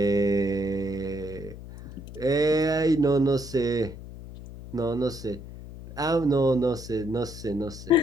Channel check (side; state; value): left; noise; hum, 13 dB below the sound